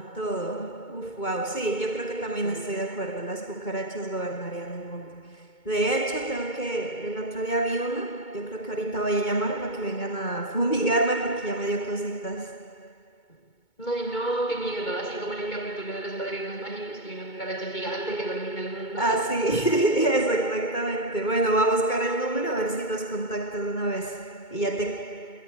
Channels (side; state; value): right; late; 2.2 ms